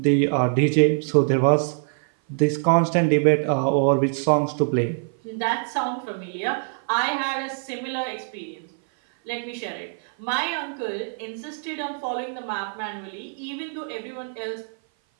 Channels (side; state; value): left; silent; 57 dB below the other